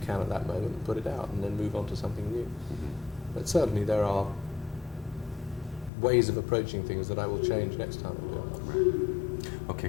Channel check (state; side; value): drops out; right; at 5.9 s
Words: at that moment and put it out and then move on to something new. But certainly there are ways of approaching things that I will change next time I do it. Okay,